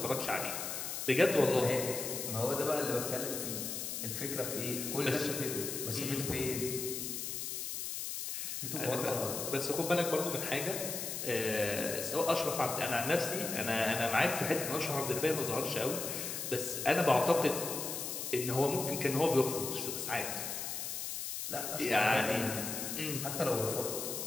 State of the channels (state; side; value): noise; left; hiss, 4 dB below the sound